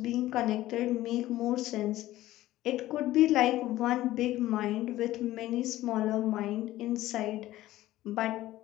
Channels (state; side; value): quieter; right; 15.5 dB